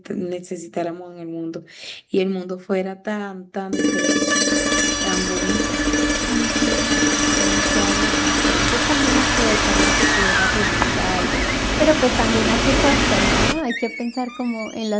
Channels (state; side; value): identical; both; correlation 1.00